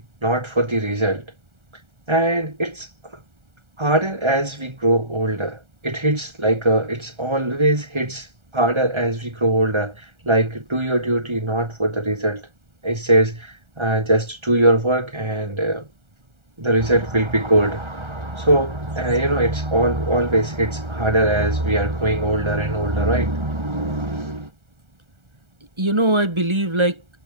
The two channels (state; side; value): late; left; 1.3 ms